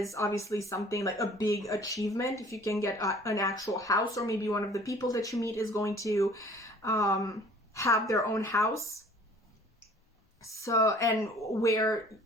obviously something like a big achievement. If you can get an actual house, or maybe one of the people that you meet is going to have their own house. So, and where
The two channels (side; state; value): both; normal; correlation 0.51